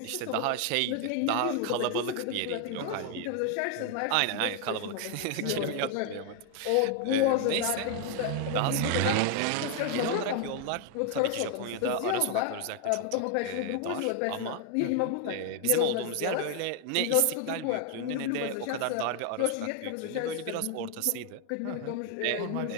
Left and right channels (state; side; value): different; both; correlation 0.00